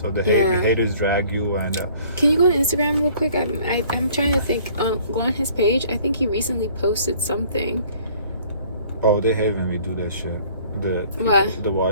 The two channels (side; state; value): both; inverted; correlation -0.55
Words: the haters drag you. And can you go on Instagram real quick? I'm trying to think. Go on his page. I think he recently posted something. Oh, they hate when we do that shit. The